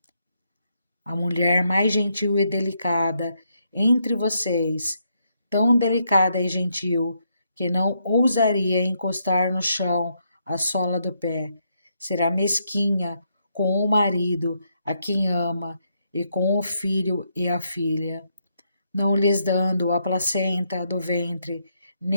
A mulher mais gentil e delicada entre vocês, tão delicada e gentil que não ousaria encostar no chão a sola do pé, será mesquinha com o marido a quem ama e com o filho e a filha, não lhes dando a placenta do ventre,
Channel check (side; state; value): both; inverted; correlation -0.77